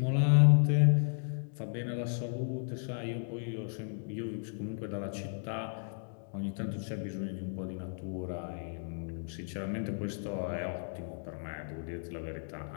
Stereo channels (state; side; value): silent; right; digital silence